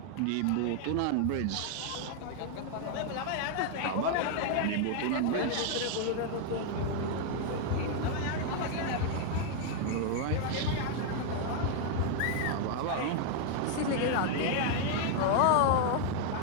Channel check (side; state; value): both; different; correlation 0.00